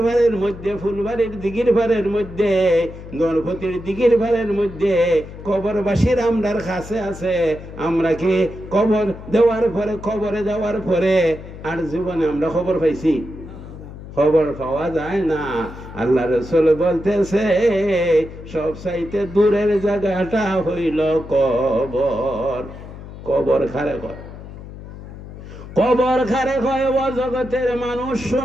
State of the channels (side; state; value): left; noise; hum, 14 dB below the sound